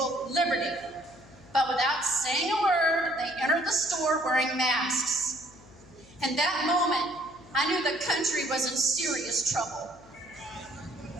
liberty. But without saying a word, they entered the store wearing masks. In that moment, I knew the country was in serious trouble.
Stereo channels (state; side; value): noise; left; hum, 24 dB below the sound